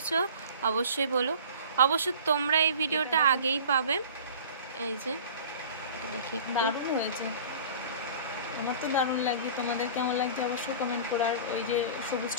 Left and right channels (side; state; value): both; inverted; correlation -0.42